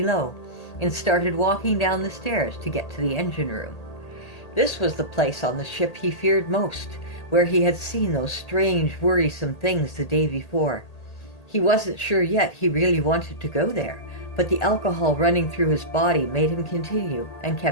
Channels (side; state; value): right; late; 1.8 ms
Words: and started walking down the stairs to get to the engine room. This was the place on the ship he feared most, where he had seen those strange, worrisome things the day before. He wasn't sure yet he really wanted to go there, but the alcohol running through his body made him continue and